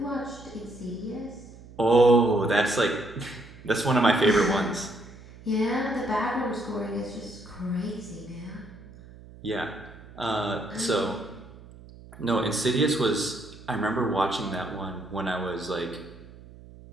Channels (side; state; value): right; noise; hum, 19 dB below the sound